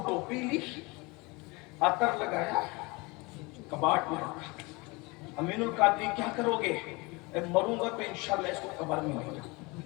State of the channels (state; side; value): quieter; right; 25.9 dB